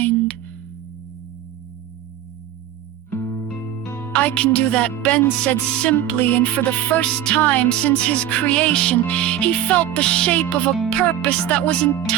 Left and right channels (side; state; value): left; quieter; 11.2 dB